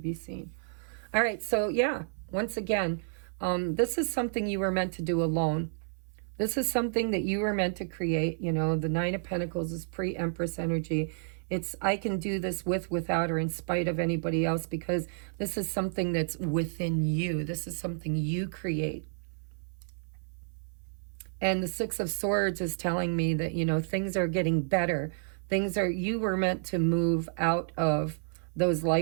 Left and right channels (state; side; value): silent; left; 57 dB below the other